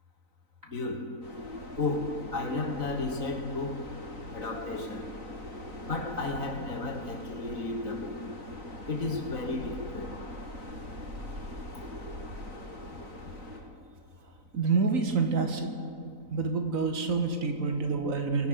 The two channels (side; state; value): left; late; 3.9 ms